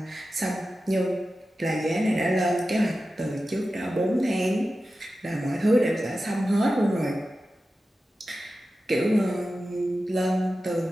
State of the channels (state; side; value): normal; both; correlation 0.93